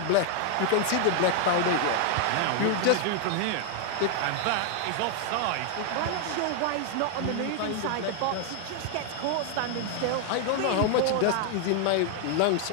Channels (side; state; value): both; different; correlation 0.00